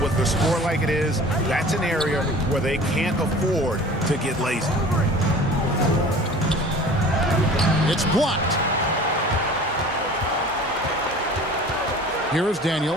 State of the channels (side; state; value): both; normal; correlation 0.43